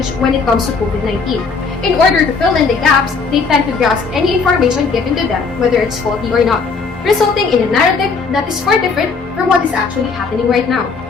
when it comes to COVID-19. In order to fill in the gaps, they tend to grasp any information given to them, whether it's faulty or not, resulting in a narrative that is far different from what is actually happening right now.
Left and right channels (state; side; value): quieter; right; 4.8 dB